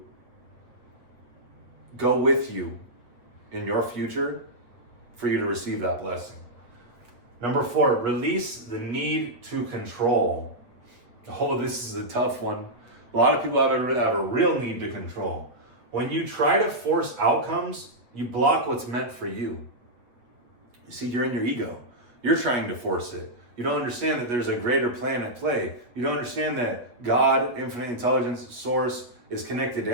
go with you in your future for you to receive that blessing. Number 4, release the need to control. Oh, this is a tough one. A lot of people have a real need to control. When you try to force outcomes, you block what's meant for you. You see, you're in your ego. You're trying to force it. You don't understand that there's a greater plan at play. You don't understand that God, infinite intelligence, source, is connected to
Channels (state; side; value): late; left; 8.3 ms